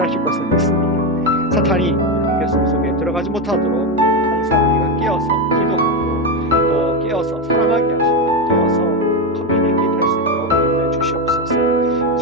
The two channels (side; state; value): both; normal; correlation 0.11